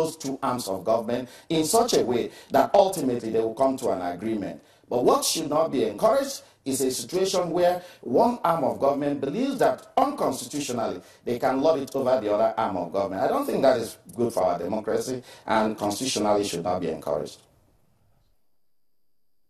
two arms of government in such a way that ultimately they will come to an agreement. But what should not be encouraged is a situation where one arm of government believes that unconstitutionally they can lord it over the other arm of government. I don't think that is good for our democracy, and constitutionally should not be encouraged.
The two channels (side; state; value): both; identical; correlation 1.00